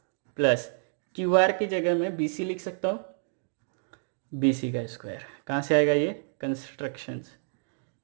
प्लस क्यू आर की जगह मैं बी सी लिख सकता हूँ, बी सी का स्क्वायर। कहाँ से आएगा ये, कंस्ट्रक्शंस।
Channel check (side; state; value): left; silent; digital silence